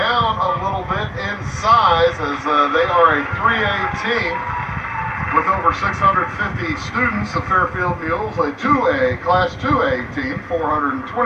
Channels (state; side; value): identical; both; correlation 1.00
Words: a little bit in size as they are a 3A team with over 650 students. The Fairfield Mules, a 2A, Class 2A team,